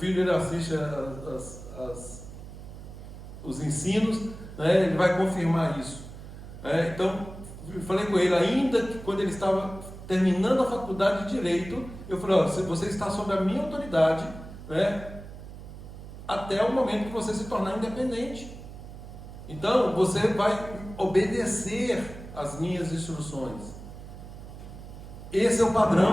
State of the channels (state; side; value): noise; right; hum, 13 dB below the sound